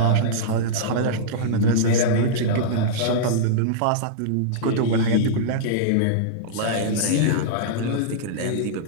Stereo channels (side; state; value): both; different; correlation -0.03